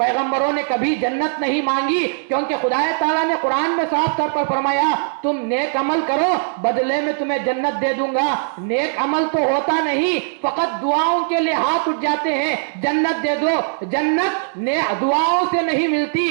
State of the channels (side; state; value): left; silent; digital silence